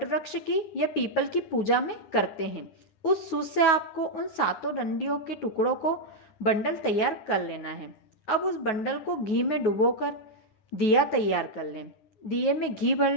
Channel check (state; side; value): late; right; 9.3 ms